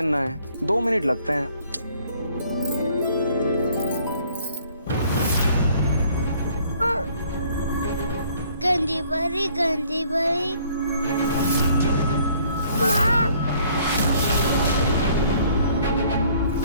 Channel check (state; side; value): inverted; both; correlation -0.60